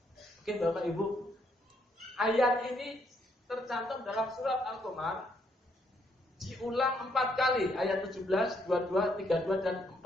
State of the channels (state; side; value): normal; both; correlation 0.73